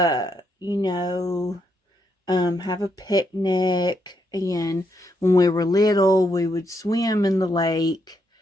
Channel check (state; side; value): normal; both; correlation 0.78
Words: a picnic. And when we were little, we would swim in the lake.